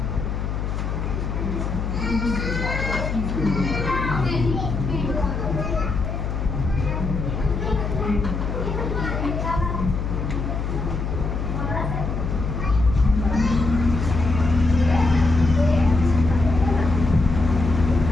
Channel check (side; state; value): left; noise; hum, 3 dB below the sound